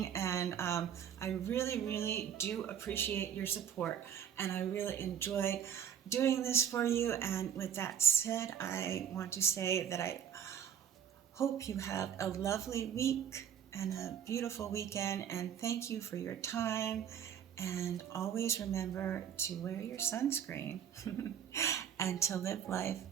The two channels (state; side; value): quieter; left; 8.9 dB